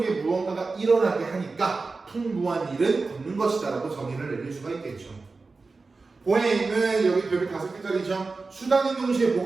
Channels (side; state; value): left; quieter; 3.9 dB